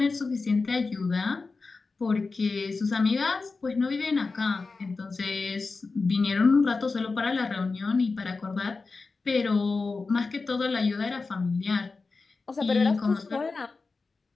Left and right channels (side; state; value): right; quieter; 4.1 dB